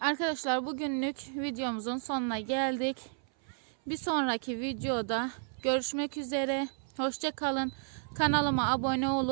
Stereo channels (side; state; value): left; silent; 55 dB below the other